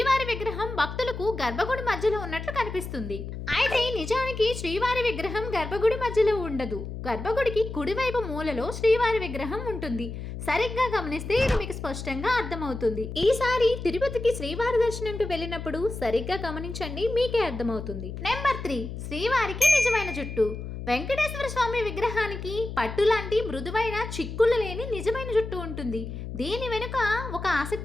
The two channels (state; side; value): noise; left; hum, 8 dB below the sound